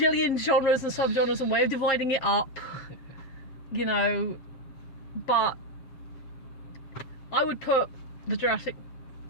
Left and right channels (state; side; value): late; right; 7.4 ms